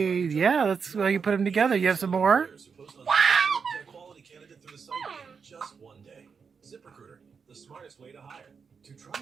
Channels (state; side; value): quieter; left; 5.9 dB